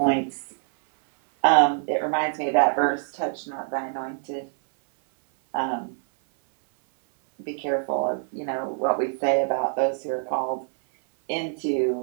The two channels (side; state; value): left; silent; 58 dB below the other